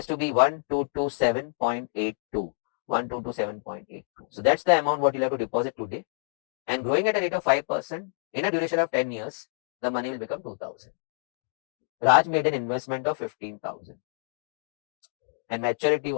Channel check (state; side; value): silent; right; digital silence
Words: to be 1227.82. 1227.82. So that's the amount what you'll have to deposit today. And growing at a rate of 5% in a duration of 10 years, the money will become 2000. Raj made an investment of 15,000 and maturity